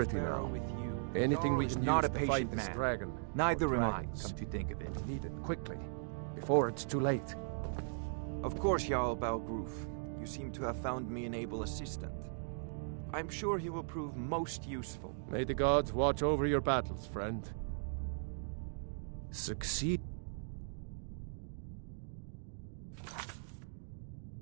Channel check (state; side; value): silent; left; digital silence